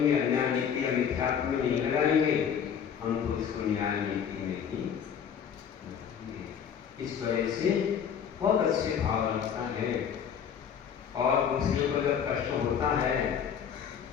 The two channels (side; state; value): right; quieter; 7.9 dB